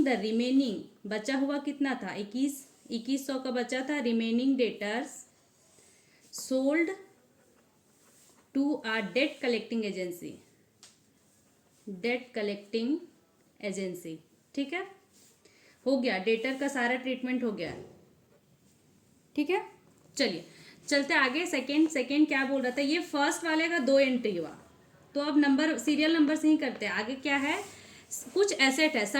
द रिमेनिंग, बचा हुआ कितना था, 2100 का बचा था, remaining debtors sold to a debt collecting agency, debt collecting agency, ठीक है, हो गया, डेटर का सारा ट्रीटमेंट हो गया, ठीक है। चलिए चलते आगे। सेकंड क्या बोल रहा था, ये फर्स्ट वाले का 2 एंट्री हुआ, तो अब नंबर सीरियल नंबर से ही करते हैं। आगे क्या है, कुछ एसेट है,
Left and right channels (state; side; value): identical; both; correlation 1.00